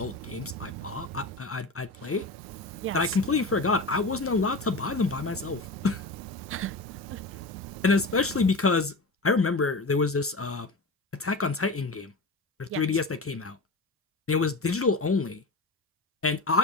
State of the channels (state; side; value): quieter; right; 3.1 dB